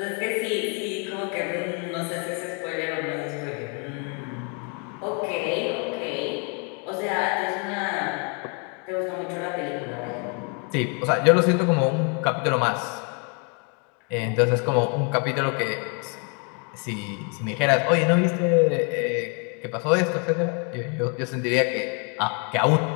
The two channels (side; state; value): right; quieter; 36.3 dB